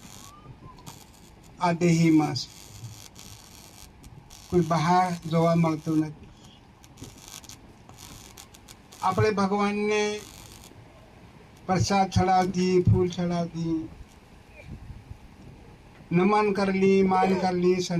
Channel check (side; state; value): both; identical; correlation 1.00